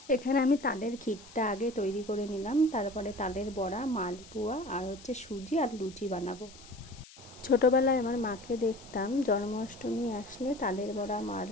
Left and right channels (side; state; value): left; noise; hiss, 20 dB below the sound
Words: এখানে আমি তালের ক্ষীরটা আগে তৈরি করে নিলাম, তারপরে তালের বড়া, মালপোয়া আর সুজি আর লুচি বানাবো। ছোটোবেলায় আমার মাকে দেখতাম জন্মাষ্টমী আসলে তালের বড়া,